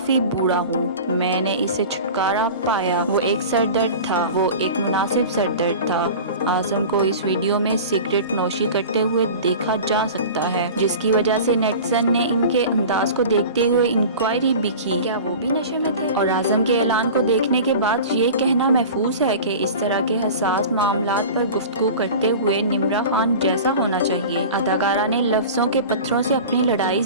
बूढ़ा हूँ, मैंने इससे छुटकारा पाया। वो एक सर दर्द था, वो एक मुनासिब सर दर्द था। आजम को इस वीडियो में सिगरेट नोशी करते हुए देखा जा सकता है, जिसकी वजह से नेटिजन ने इनके अंदाज को देखते हुए इंक्वायरी भी की, क्या वो भी नशे में थे। और आजम के ऐलान को देखने के बाद ये कहना महफूज है कि इस तरह के हसास मामलात पर गुफ्तगू करते हुए निम्रा खान जैसा होना चाहिए। अदाकारा ने लफ्जों के पत्थरों से अपनी लड़ाई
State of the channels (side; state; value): both; inverted; correlation -0.36